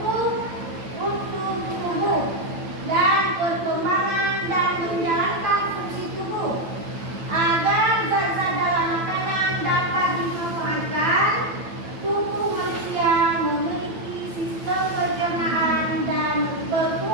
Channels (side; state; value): left; late; 9.0 ms